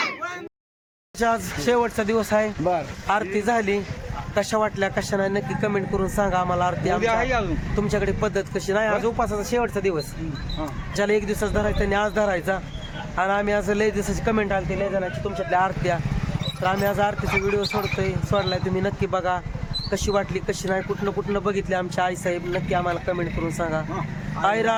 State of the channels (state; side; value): identical; both; correlation 1.00